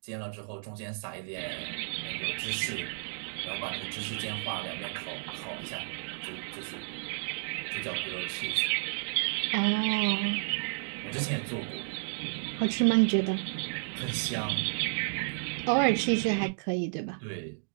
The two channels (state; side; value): silent; left; digital silence